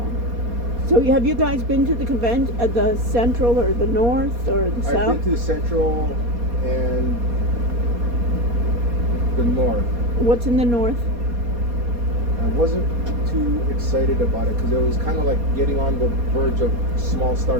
So have you guys been to the convention at the Central or the North or the I've South? been to the Central and the North. What's in the North? I wasn't too excited about it because it was kind of like getting on the verge of small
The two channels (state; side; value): late; left; 4.2 ms